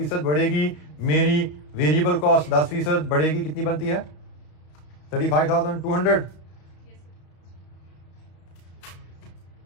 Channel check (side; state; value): right; late; 33 ms